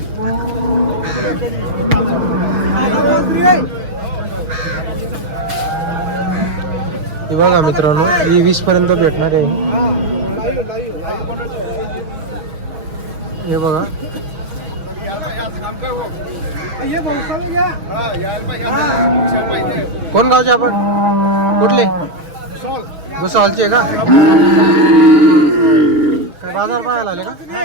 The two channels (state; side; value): late; left; 6.4 ms